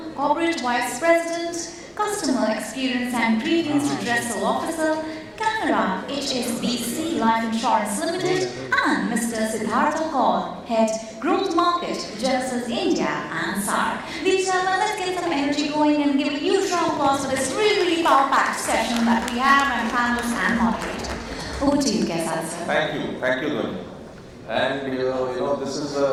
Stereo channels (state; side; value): identical; both; correlation 1.00